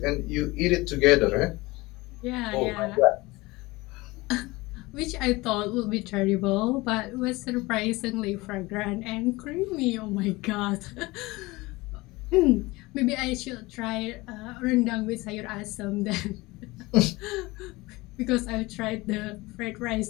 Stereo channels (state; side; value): quieter; right; 21.8 dB